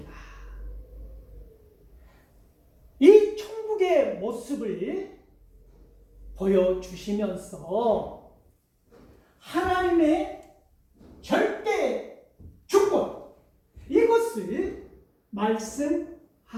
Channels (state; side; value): identical; both; correlation 1.00